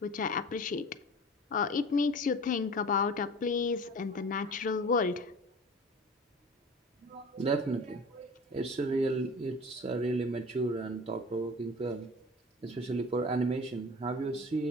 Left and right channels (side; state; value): both; normal; correlation 0.39